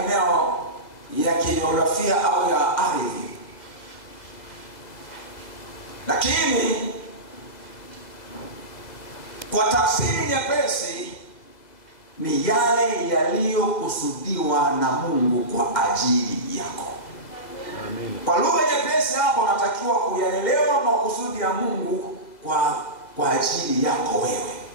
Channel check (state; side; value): late; right; 2.0 ms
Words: ya kijiografia au ya ardhi. Lakini kwa tafsiri nyepesi ni yale yaliyokusudiwa na Mungu kwa ajili yako. Amen. Kwa lugha nyepesi hapo unatakiwa kuyaelewa makusudi ya Mungu kwa ajili yako wewe.